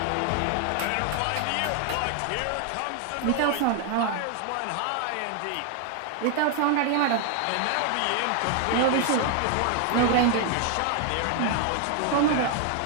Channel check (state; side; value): different; both; correlation 0.00